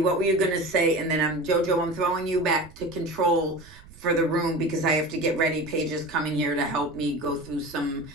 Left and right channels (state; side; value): noise; right; rumble, 21 dB below the sound